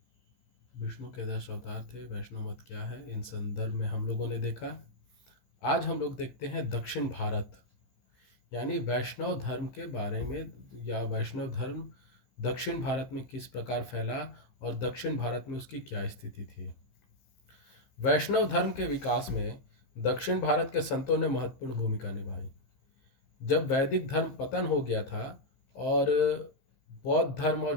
विष्णु के 10 अवतार थे। वैष्णव मत क्या है, इन संदर्भ में हम लोगों ने देखा। आज हम लोग देखते हैं दक्षिण भारत, यानी वैष्णव धर्म के बारे में, या वैष्णव धर्म दक्षिण भारत में किस प्रकार फैला और दक्षिण भारत में उसकी क्या स्थिति थी। वैष्णव धर्म के विकास में दक्षिण भारत के संतों ने महत्वपूर्ण भूमिका निभाई। जब वैदिक धर्म पतन हो गया था और बौद्ध धर्म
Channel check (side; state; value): right; late; 15 ms